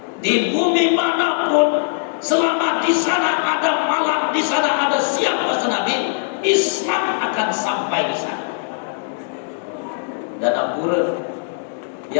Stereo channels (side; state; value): right; silent; 66 dB below the other